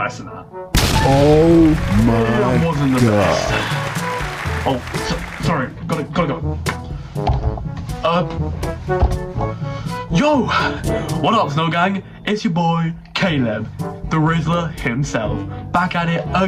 and that. Oh my It wasn't the God. best. Oh, sorry. Gotta go. Yo! What up, Snow Gang? It's your boy, Caleb, the Rizzler himself, back at it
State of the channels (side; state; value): both; identical; correlation 1.00